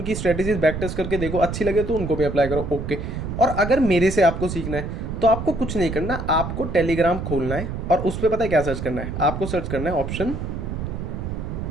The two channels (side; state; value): right; noise; rumble, 5 dB below the sound